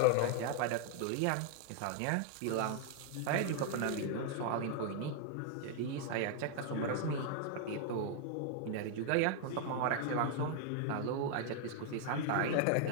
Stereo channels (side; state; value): both; different; correlation 0.00